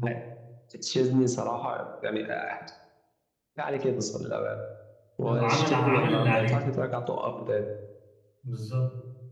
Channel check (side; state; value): both; identical; correlation 1.00